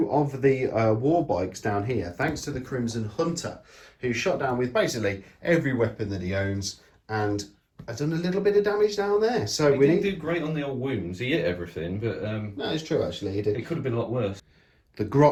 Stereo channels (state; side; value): identical; both; correlation 1.00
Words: of the war bikes down here, thanks to the Crimson Hunter, who shot down with basically every weapon that he owns, and I've done a little bit of damage down there. So he didn't do great on the old wounds. He hit everything, but no, it's true actually. He did. It could have been a lot worse. The